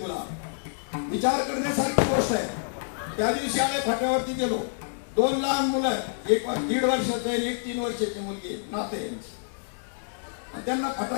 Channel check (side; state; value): right; silent; digital silence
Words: विचार करण्यासारखी गोष्ट आहे. त्या दिवशी आळे फाट्यावरती गेलो, 2 लहान मुलं आहेत, एक 1.5 वर्षाचं आहे आणि एक 3 वर्षाची मुलगी, नाते यांची, आणि त्यांना